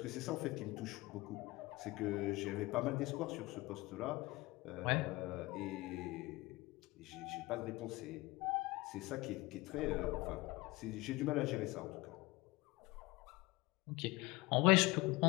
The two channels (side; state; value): right; quieter; 21.3 dB